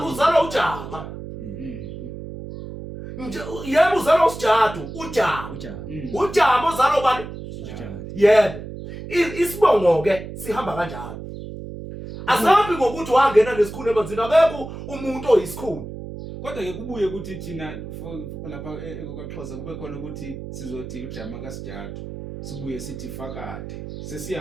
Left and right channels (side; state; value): right; noise; hum, 10 dB below the sound